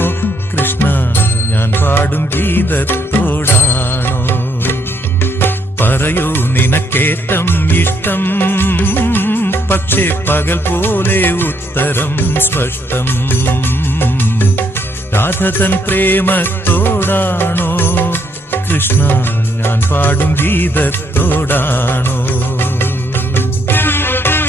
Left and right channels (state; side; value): normal; both; correlation 0.73